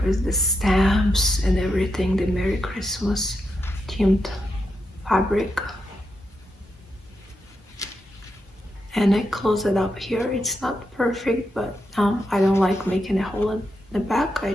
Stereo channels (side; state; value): both; normal; correlation 0.85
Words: with the stamps and everything, the Merry Christmas themed fabric. And I close it up here. It's not perfect, but I don't like making a hole in the back. I